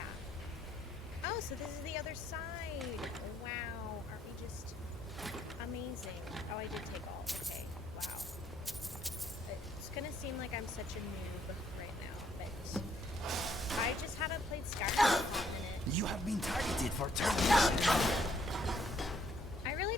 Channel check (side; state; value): both; normal; correlation 0.68